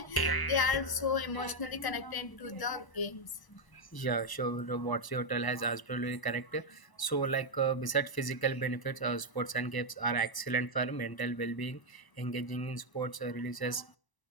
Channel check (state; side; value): late; right; 1.0 ms